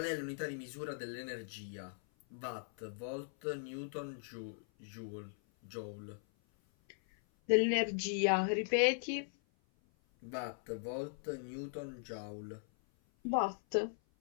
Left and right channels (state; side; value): silent; right; 52 dB below the other